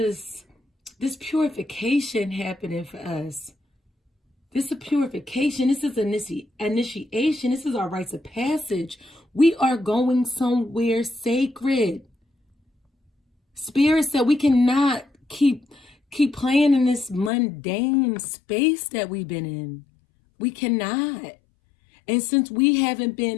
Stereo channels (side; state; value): right; drops out; at 17.3 s